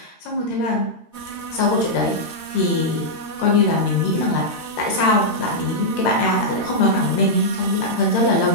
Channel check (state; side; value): late; right; 13 ms